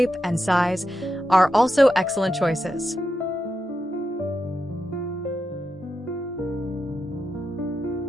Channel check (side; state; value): both; normal; correlation 0.87